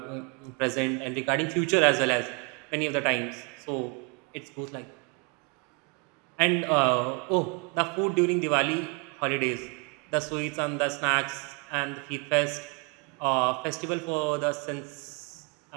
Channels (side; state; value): left; quieter; 31.8 dB